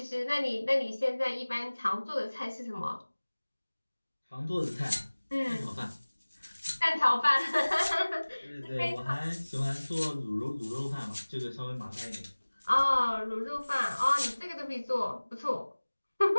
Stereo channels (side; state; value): both; inverted; correlation -1.00